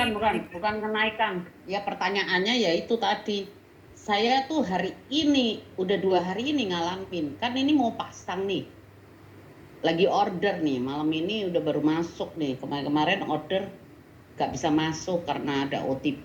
Bukan kenaikan. Ya pertanyaannya ya itu tadi. Saya tuh hari ini, udah 2 hari ini ngalamin. Kan ini mau pasang nih. Lagi order nih, malam ini udah baru masuk nih. Kemarin order gak bisa masuk karena ada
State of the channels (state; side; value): identical; both; correlation 1.00